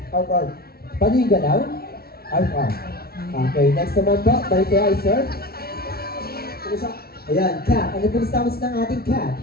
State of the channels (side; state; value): right; late; 0.44 ms